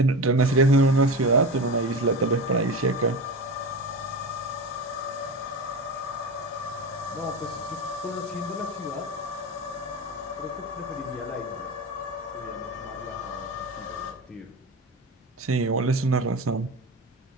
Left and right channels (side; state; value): both; normal; correlation 0.25